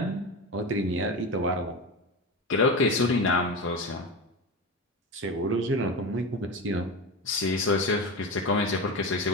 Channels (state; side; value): normal; both; correlation 0.22